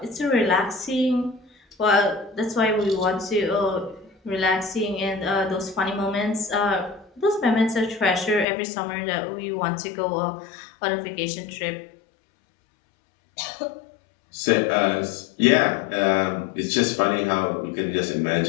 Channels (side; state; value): right; drops out; at 8.5 s